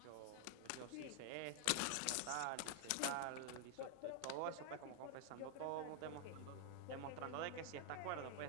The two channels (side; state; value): both; different; correlation 0.00